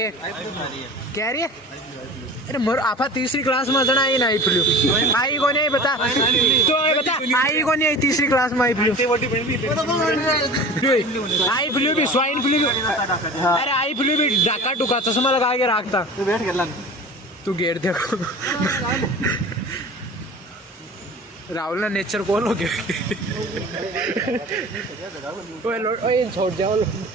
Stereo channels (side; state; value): both; normal; correlation 0.37